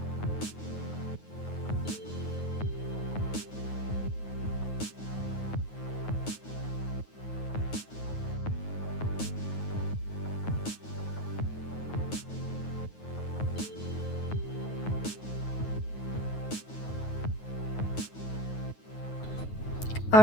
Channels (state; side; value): late; right; 9.4 ms